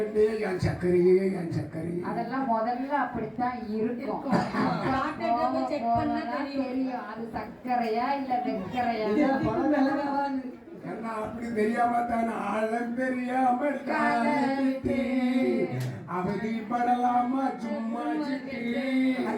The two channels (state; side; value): identical; both; correlation 1.00